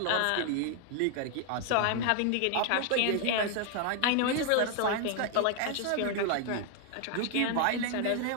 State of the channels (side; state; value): both; different; correlation 0.00